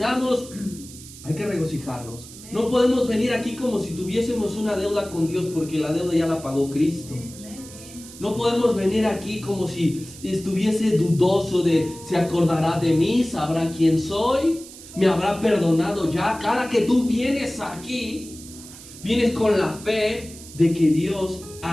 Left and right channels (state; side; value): noise; right; hiss, 17 dB below the sound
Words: hay que regocijarnos. No podemos venir aquí como si tuviésemos una deuda con Dios, porque la deuda ya la pagó Cristo. No podemos venir aquí como si estuviese dudoso de: ¿se acordará de mí? ¿Sabrá quién soy? ¿Me habrá perdonado ya? Cada que tú vienes aquí, vienes con la fe de que Dios